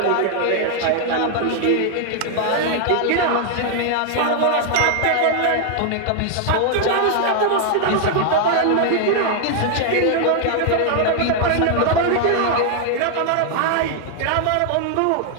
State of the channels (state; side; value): different; both; correlation 0.00